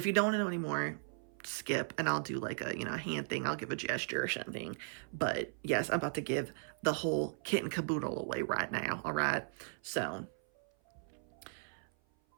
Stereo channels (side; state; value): left; silent; 53 dB below the other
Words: you don't want to know anymore, skip, and I'll do like a hand thing. I'll give a gesture or something. But yes, I'm about to give the whole kit and caboodle away right now. All right. So